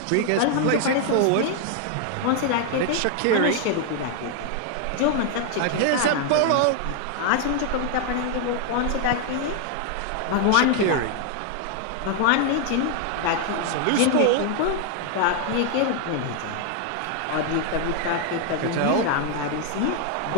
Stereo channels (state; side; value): different; both; correlation 0.00